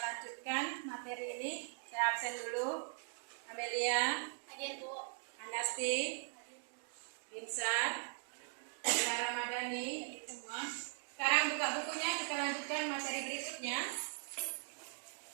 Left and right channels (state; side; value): silent; left; 51 dB below the other